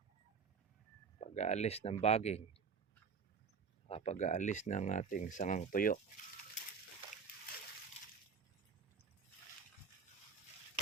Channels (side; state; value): left; quieter; 5.9 dB